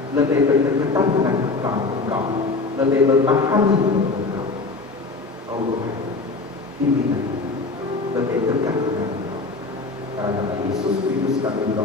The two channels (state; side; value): quieter; right; 3.7 dB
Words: lebih berdekatan dengan Engkau, lebih memahami Engkau. Oh Tuhan, bimbingan kami lebih dekat dengan Engkau. Dalam nama Yesus Kristus kami